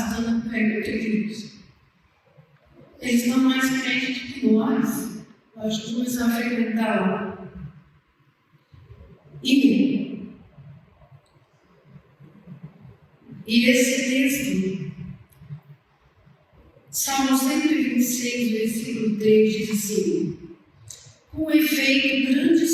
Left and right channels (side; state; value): both; identical; correlation 1.00